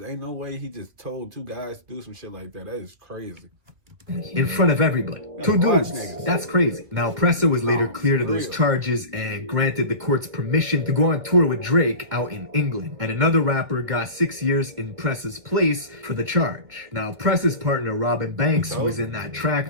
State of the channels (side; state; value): left; late; 2.4 ms